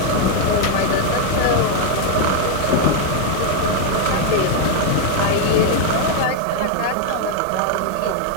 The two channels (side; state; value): both; different; correlation 0.00